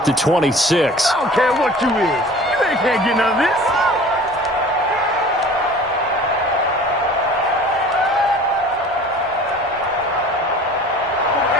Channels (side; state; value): both; normal; correlation 0.44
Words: the 26. I don't care what you is. You can't get none of this.